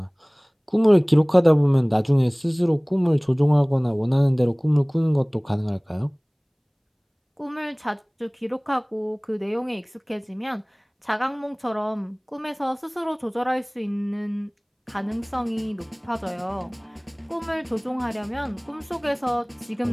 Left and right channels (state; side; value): identical; both; correlation 1.00